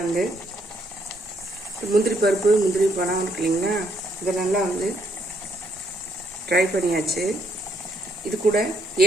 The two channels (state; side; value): normal; both; correlation 0.73